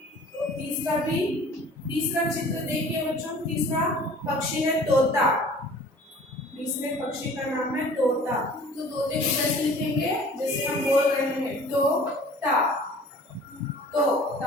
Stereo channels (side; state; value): both; normal; correlation 0.48